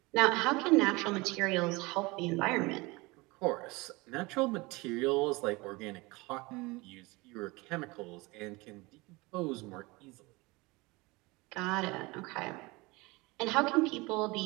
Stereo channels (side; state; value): left; quieter; 23.8 dB